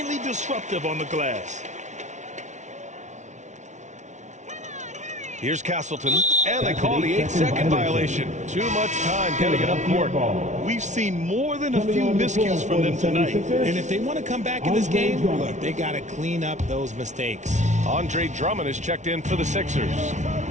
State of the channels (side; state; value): left; late; 0.34 ms